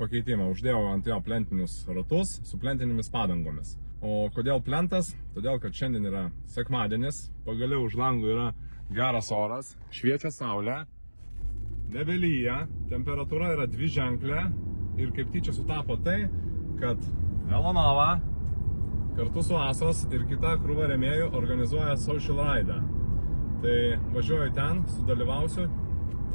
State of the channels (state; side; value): inverted; both; correlation -1.00